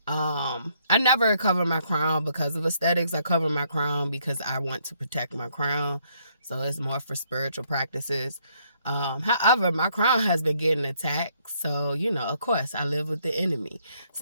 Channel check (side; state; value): both; inverted; correlation -0.70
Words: I never cover my crown because of aesthetics. I cover my crown because I want to protect my crown, so it's more for spiritual practices. However, my crown has been getting attacked, so of course, I live with the enemy,